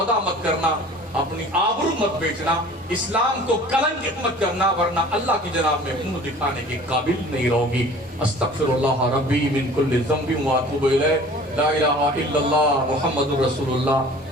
مت کرنا، اپنی آبرو مت بیچنا، اسلام کو کلنکت مت کرنا، ورنہ اللہ کی جناب میں منہ دکھانے کے قابل نہیں رہو گی۔ استغفر اللہ ربی من کل ذنب واتوب الیہ، لا الہ الا اللہ محمد رسول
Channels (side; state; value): both; normal; correlation 0.46